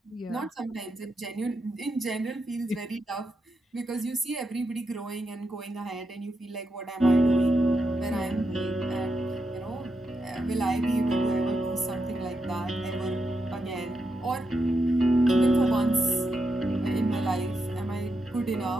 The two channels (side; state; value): both; normal; correlation 0.85